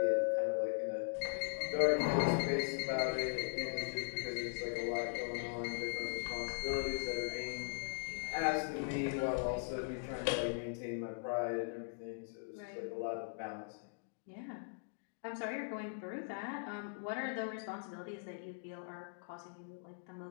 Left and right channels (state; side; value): silent; right; digital silence